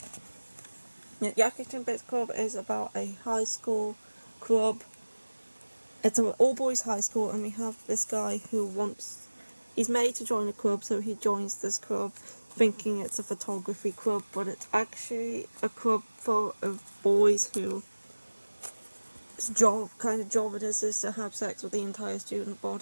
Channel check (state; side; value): inverted; both; correlation -1.00